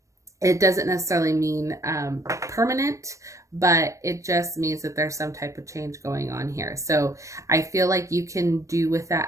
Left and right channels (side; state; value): left; late; 0.15 ms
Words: It doesn't necessarily mean permanent, but it just means that there's some type of change going on here. So I feel like you can do with